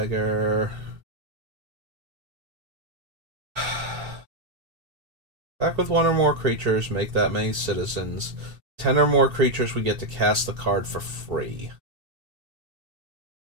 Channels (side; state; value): left; late; 2.7 ms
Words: Back with one or more creatures, make that many citizens. 10 or more creatures, we get to cast the card for free.